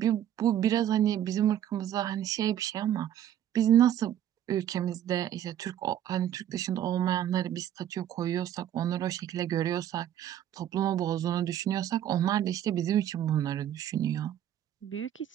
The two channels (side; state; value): left; quieter; 11.0 dB